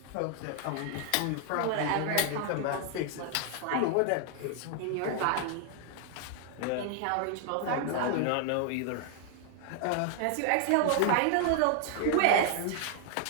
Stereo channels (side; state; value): both; different; correlation 0.00